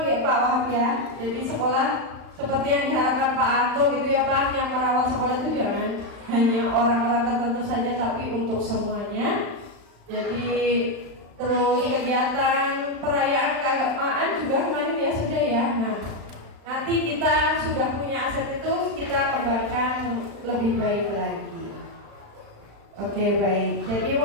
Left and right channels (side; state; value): left; late; 35 ms